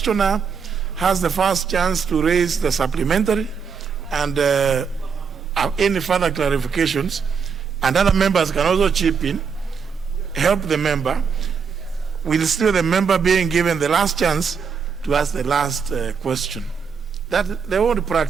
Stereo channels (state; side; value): quieter; left; 6.1 dB